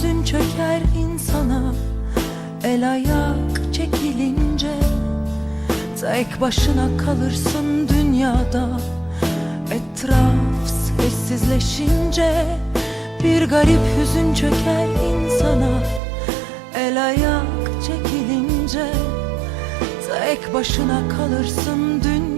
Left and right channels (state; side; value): drops out; left; at 16.0 s